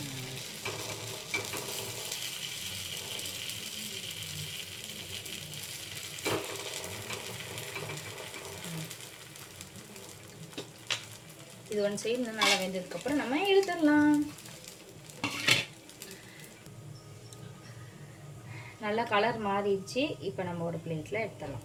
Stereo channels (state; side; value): identical; both; correlation 1.00